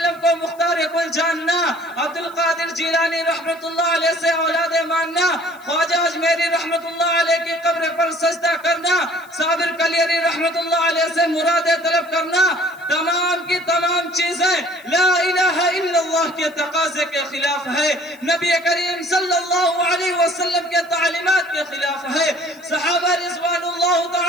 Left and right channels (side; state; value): left; noise; hiss, 27 dB below the sound